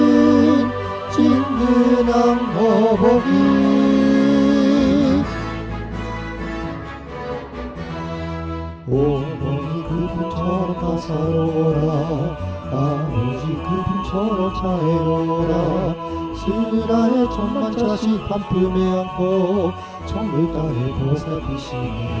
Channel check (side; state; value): both; identical; correlation 1.00